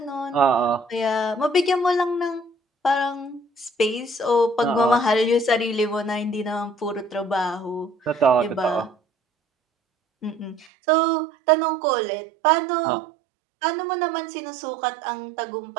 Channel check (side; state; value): left; drops out; at 10.7 s